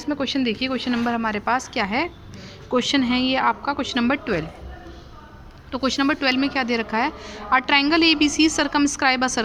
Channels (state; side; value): identical; both; correlation 1.00